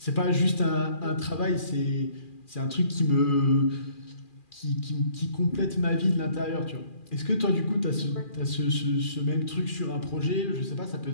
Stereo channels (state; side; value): late; right; 2.4 ms